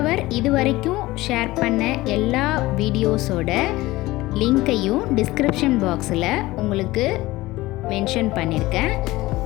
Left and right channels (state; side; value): quieter; right; 18.8 dB